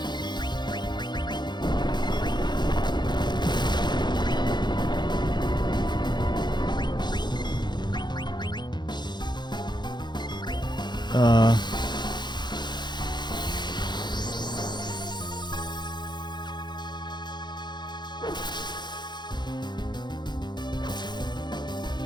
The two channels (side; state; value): right; late; 0.21 ms